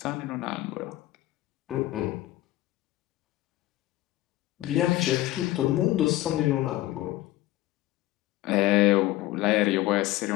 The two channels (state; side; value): quieter; right; 16.5 dB